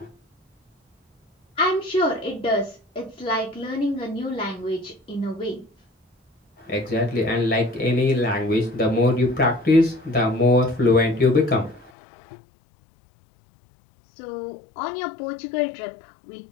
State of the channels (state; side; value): drops out; right; at 11.9 s